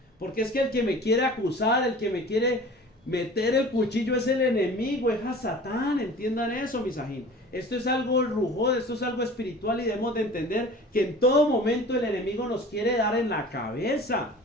Porque es que el que me quiere acusar, el que me quiere meter el cuchillo es el enemigo, es a Satán, entiendan eso, mis ajín. Esto es algo rujón, esto es algo espiritual y debemos de entender que en todo momento el enemigo nos quiere dar en la cabeza.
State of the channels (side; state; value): both; normal; correlation 0.42